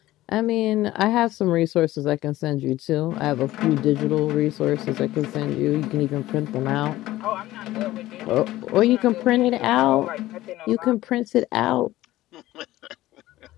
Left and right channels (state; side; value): quieter; right; 16.1 dB